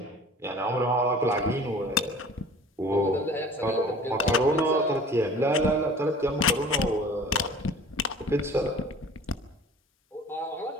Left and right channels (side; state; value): both; normal; correlation 0.46